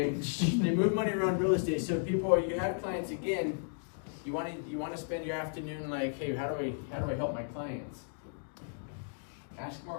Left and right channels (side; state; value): right; silent; digital silence